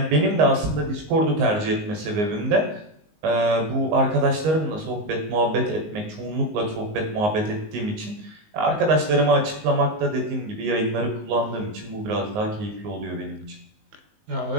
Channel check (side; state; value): left; late; 19 ms